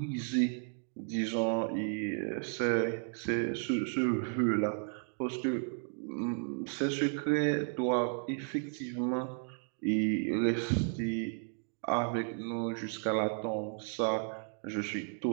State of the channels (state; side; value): silent; left; 55 dB below the other